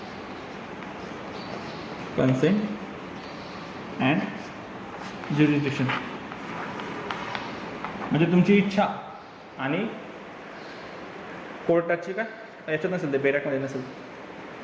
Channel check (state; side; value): identical; both; correlation 1.00